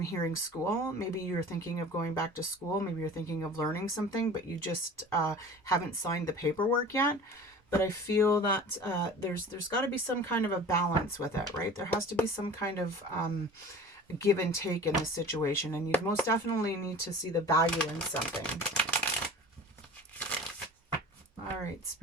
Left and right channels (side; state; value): both; normal; correlation 0.40